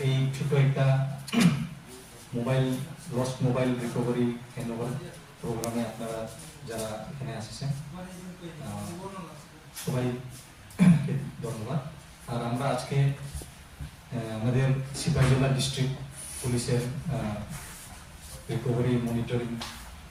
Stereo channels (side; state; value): both; identical; correlation 1.00